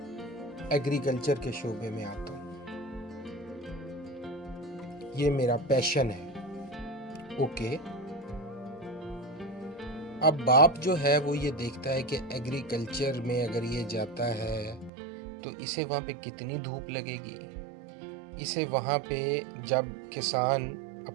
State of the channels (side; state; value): left; drops out; at 14.9 s